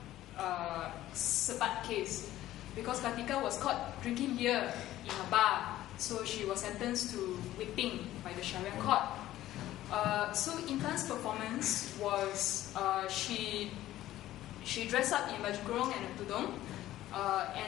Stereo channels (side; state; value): right; quieter; 14.4 dB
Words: Sebat case, because Kartika was caught drinking beer in a bar, so she was sentenced to whipping by the Sharia court. So Intan's performance was she dressed up in baju kurung and a tudung,